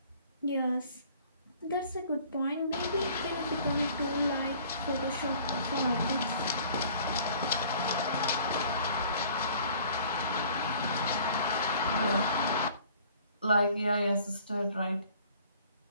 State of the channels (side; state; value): both; inverted; correlation -0.53